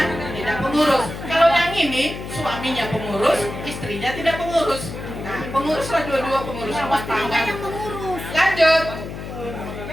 tidak pengurus. Kalau yang ini suaminya pengurus, istrinya tidak pengurus. Nah, penguruslah dua-dua pengurus rumah tangga. Lanjut.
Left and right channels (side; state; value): left; noise; hum, 9 dB below the sound